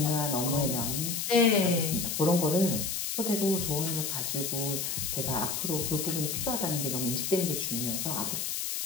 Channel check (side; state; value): left; noise; hiss, 2 dB below the sound